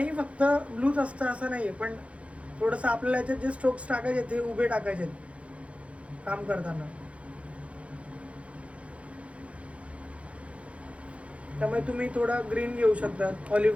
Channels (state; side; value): late; left; 0.063 ms